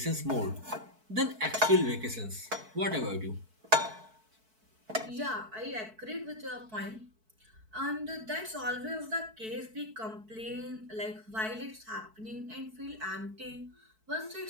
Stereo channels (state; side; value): late; left; 4.6 ms